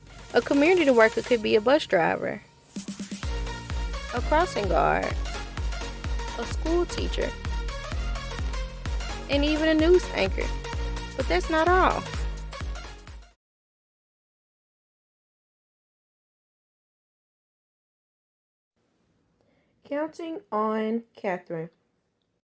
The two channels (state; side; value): identical; both; correlation 1.00